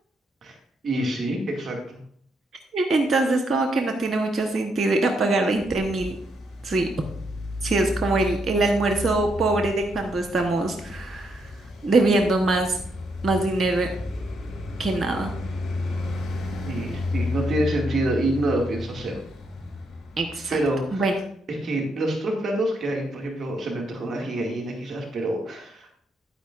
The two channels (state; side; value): normal; both; correlation 0.77